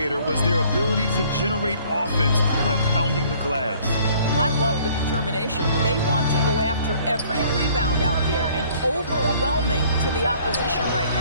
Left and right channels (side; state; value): both; inverted; correlation -0.57